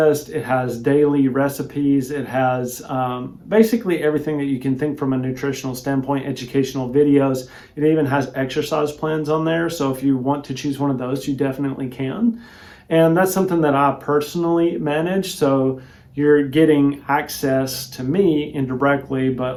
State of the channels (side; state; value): both; identical; correlation 1.00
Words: it has daily recipes, it has basically everything that you can think from a nutritional standpoint, educational videos. It even has exercise plans on there. So if you want to choose one of those, you definitely can. And that's something that I personally manage. So you're getting access to me indirectly,